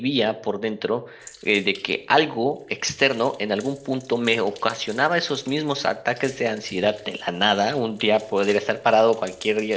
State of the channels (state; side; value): identical; both; correlation 1.00